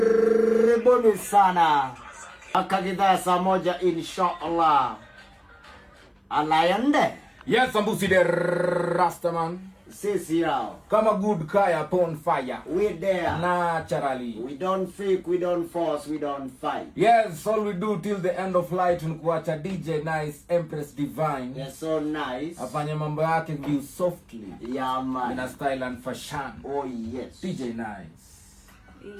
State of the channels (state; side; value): identical; both; correlation 1.00